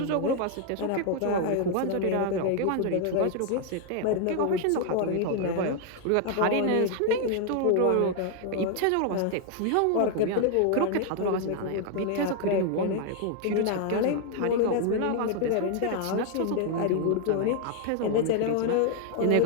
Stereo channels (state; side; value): different; both; correlation 0.00